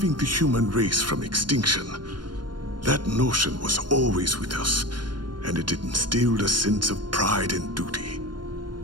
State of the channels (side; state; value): left; late; 0.71 ms